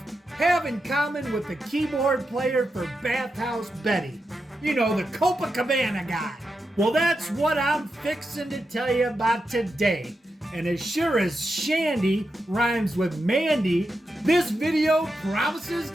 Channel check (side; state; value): both; normal; correlation 0.88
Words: have in common with the keyboard player for Bathhouse Betty? You know, the Copacabana guy. Well, that's what I'm fixing to tell you about today. And as sure as Shandy rhymes with Mandy, this video promises